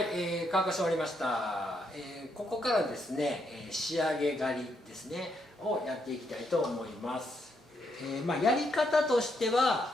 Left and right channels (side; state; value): both; normal; correlation 0.77